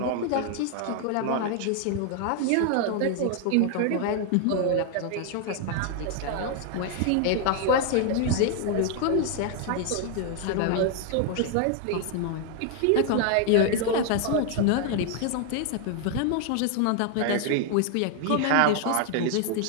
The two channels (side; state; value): both; different; correlation 0.00